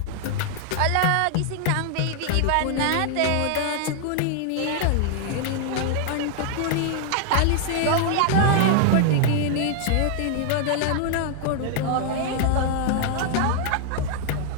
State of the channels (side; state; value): both; different; correlation -0.01